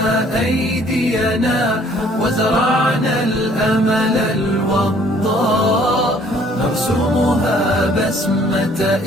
أيدينا وزرعنا الأمل الوضاء، نرسمها بسمة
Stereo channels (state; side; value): normal; both; correlation 0.59